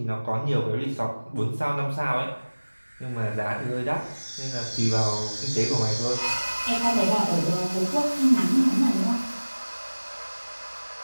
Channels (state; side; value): inverted; both; correlation -1.00